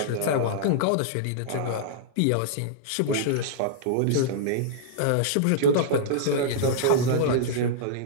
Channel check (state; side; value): different; both; correlation -0.02